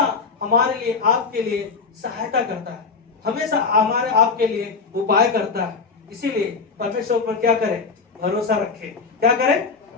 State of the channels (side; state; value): right; quieter; 4.8 dB